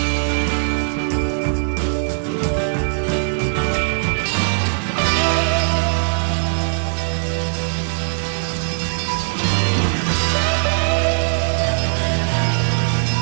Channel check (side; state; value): left; silent; digital silence